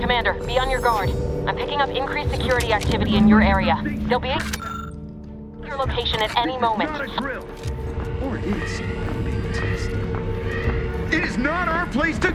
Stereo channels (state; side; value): identical; both; correlation 1.00